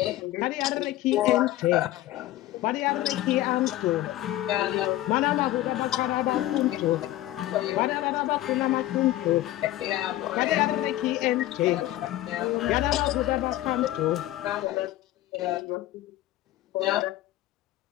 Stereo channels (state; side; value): quieter; right; 15.2 dB